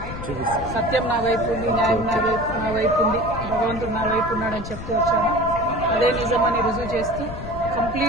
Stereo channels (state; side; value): noise; left; rumble, 9 dB below the sound